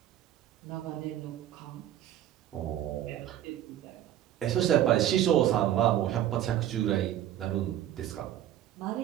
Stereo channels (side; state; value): left; quieter; 12.0 dB